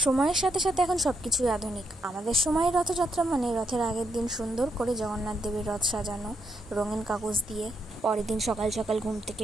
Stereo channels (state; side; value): normal; both; correlation 0.79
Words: সময়ের সাথে সাথে এখন সব কিছুই আধুনিক। আমাদের সময়ে রথযাত্রা মানে রথের আগের দিন সুন্দর করে জগন্নাথ দেবের রথ সাজানো রঙিন কাগজ দিয়ে, পরের দিন সকাল সকাল ঘুম থেকে